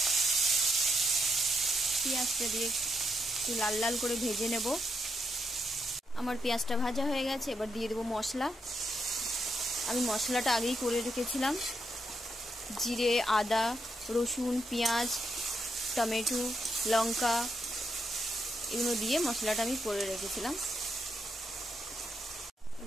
পেঁয়াজটা দিয়ে একটু লাল লাল করে ভেজে নেব। আমার পেঁয়াজটা ভাজা হয়ে গেছে, এবার দিয়ে দেবো মশলা। আমি মশলাটা আগেই করে রেখেছিলাম, জিরে, আদা, রসুন, পেঁয়াজ, টমেটো, লঙ্কা এগুলো দিয়ে মশলাটা আমি করে রেখেছিলাম।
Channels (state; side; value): normal; both; correlation 0.80